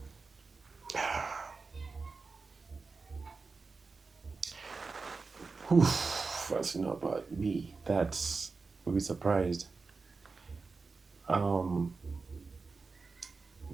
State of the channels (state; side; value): quieter; left; 4.3 dB